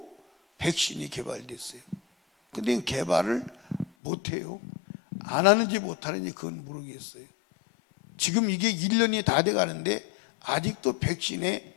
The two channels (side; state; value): right; drops out; at 3.9 s